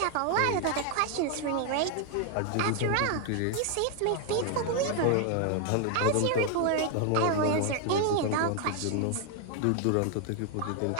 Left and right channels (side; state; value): both; different; correlation 0.00